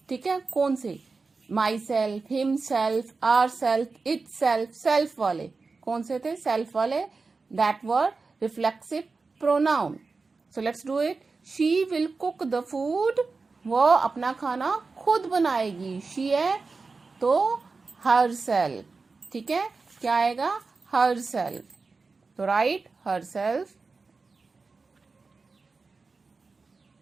ठीक है, कौन से? myself, himself, ourself, itself, self वाले कौन से थे? self वाले. that were reflexive pronoun. so let's do it. she will cook the food. वो अपना खाना खुद बनाएगी. she है तो herself. ठीक है, क्या आएगा? herself. तो write herself.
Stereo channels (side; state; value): left; quieter; 4.2 dB